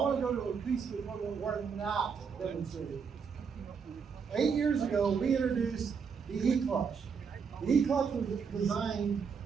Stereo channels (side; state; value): left; quieter; 6.1 dB